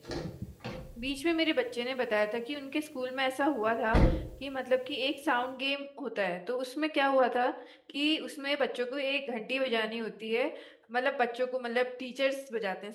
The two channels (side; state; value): both; identical; correlation 1.00